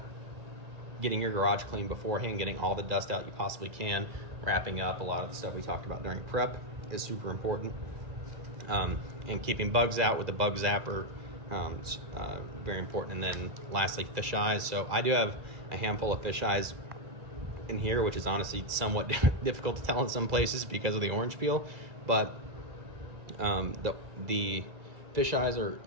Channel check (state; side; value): late; left; 2.0 ms